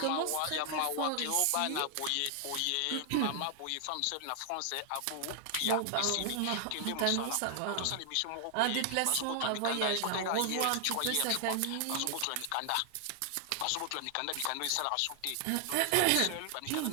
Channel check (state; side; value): different; both; correlation 0.00